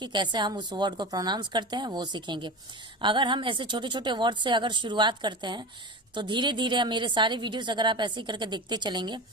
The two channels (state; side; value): normal; both; correlation 0.28